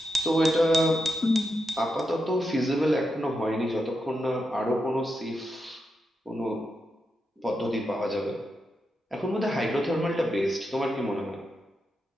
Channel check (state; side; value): normal; both; correlation 0.86